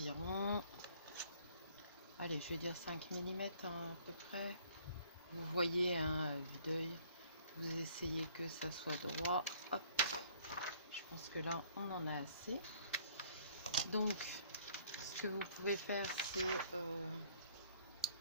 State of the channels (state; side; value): inverted; both; correlation -0.58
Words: allez, je vais dire 5 mm à peu près. Vous voyez à vue d'œil, vous essayez que ça soit droit. Hop. Je pense que là on en a assez. Donc ce que vous pouvez faire, c'est